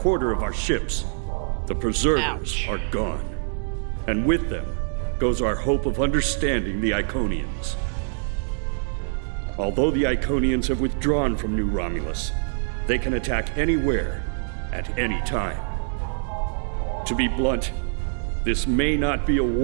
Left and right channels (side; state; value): left; silent; 62 dB below the other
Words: of our ships. The Preservers are gone, and with them goes our hope of understanding the Iconians. Although the Iconians have withdrawn from New Romulus, they can attack anywhere, at any time. To be blunt, this may not be a